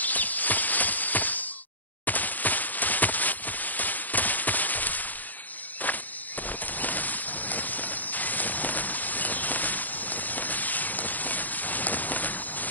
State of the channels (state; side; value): late; right; 0.083 ms